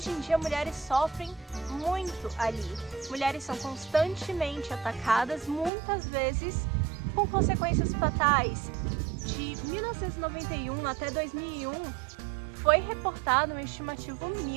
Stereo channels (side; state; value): left; drops out; at 5.7 s